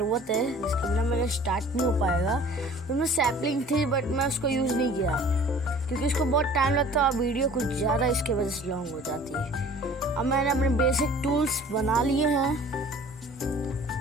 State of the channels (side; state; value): both; normal; correlation 0.48